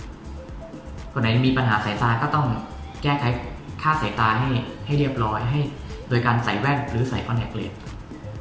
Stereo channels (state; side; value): identical; both; correlation 1.00